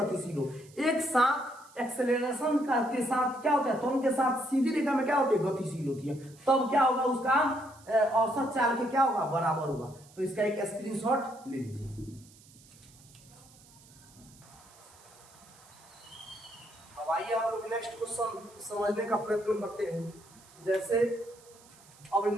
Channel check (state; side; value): noise; right; hiss, 25 dB below the sound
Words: हो, एक साथ एक्सेलरेशन के साथ क्या होता है, त्वरण के साथ सीधी रेखा में क्या होती है, गतिशील होती है, तब क्या होगा उसका औसत चाल के क्या होगा, बराबर होगा। तो इसका एक स्क्रीनशॉट ले लीजिए। अब आइए हम लोग नेक्स्ट क्वेश्चन समझने का प्रयत्न करते हैं। जैसे अब